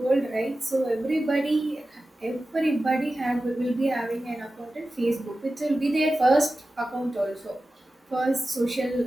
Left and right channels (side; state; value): both; normal; correlation 0.94